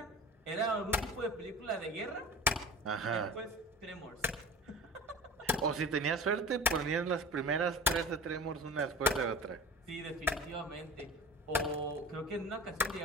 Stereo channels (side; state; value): both; normal; correlation 0.36